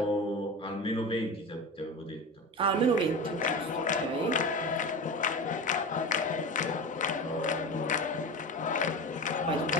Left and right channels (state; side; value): normal; both; correlation 0.27